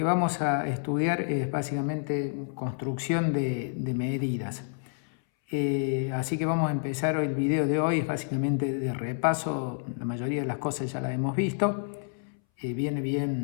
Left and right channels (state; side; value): silent; right; 59 dB below the other